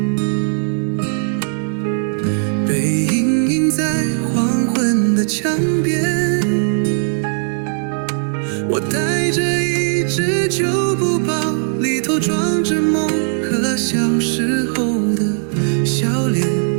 背影映在黄昏的墙边。我带着一只旧布包，里头装着梦和小时候的笑脸。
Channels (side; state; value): left; silent; digital silence